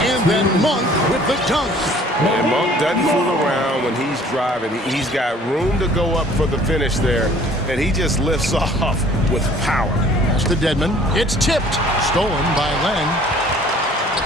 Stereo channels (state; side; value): normal; both; correlation 0.54